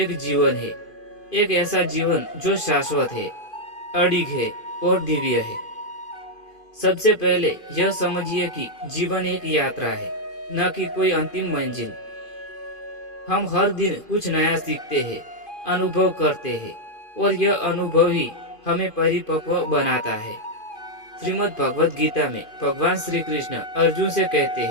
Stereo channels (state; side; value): late; right; 2.5 ms